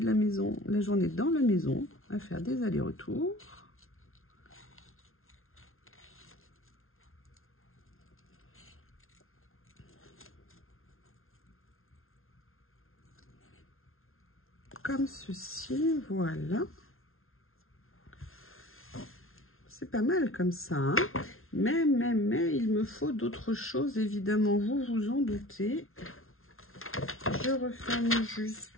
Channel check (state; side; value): late; right; 0.61 ms